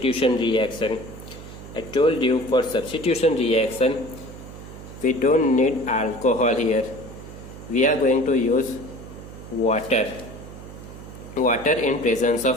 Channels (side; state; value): right; noise; hum, 14 dB below the sound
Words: reaction. I told you for substitution reaction we don't need alcohol here. We are going to use water in presence